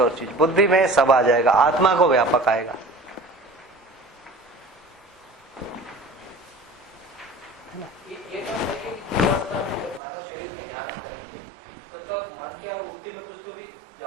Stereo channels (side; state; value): left; drops out; at 10.0 s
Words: चीज, बुद्धि में सब आ जाएगा, आत्मा को व्यापक आएगा। ये बात है कि जीवावस्था में जब हमारा शरीर ध्यान हो, मतलब मन की और वृत्ति में कुछ तो भी